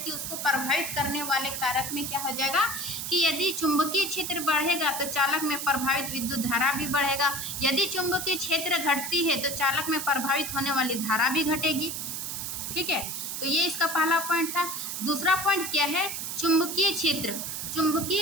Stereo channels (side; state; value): right; noise; hiss, 4 dB below the sound